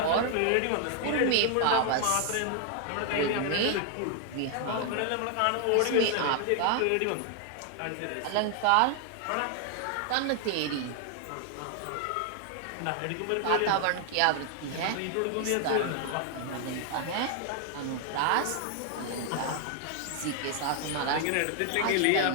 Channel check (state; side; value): different; both; correlation 0.00